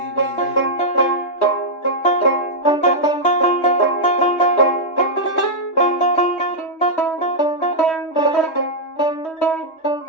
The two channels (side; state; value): right; late; 3.2 ms